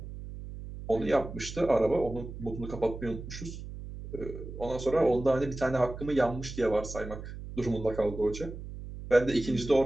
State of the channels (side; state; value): right; noise; hum, 11 dB below the sound